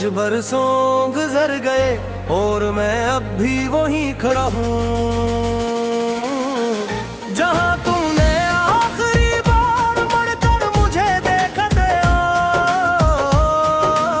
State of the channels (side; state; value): both; identical; correlation 1.00